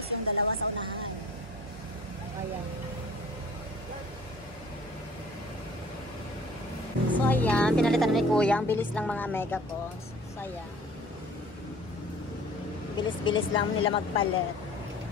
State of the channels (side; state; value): both; normal; correlation 0.49